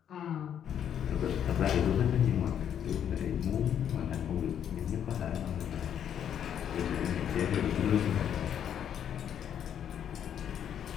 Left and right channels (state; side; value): quieter; right; 9.2 dB